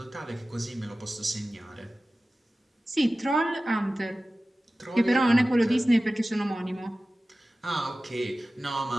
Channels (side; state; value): both; normal; correlation 0.96